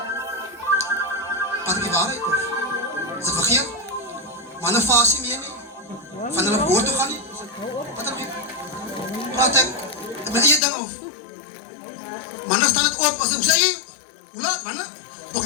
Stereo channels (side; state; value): right; drops out; at 10.6 s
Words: Wat die waarheid of? Is dit vergeet? Manne vas nie meer nie. Van hulle woord toe gaan nie. Wat dan? Praat ek met eie ding of? Manne staan het op, as ek sê, hoe laat, manne? Ook